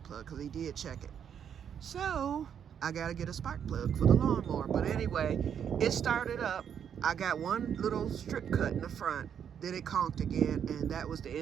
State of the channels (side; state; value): left; quieter; 8.3 dB